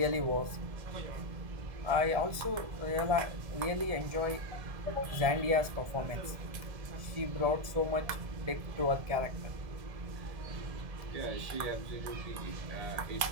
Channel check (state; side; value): late; left; 1.7 ms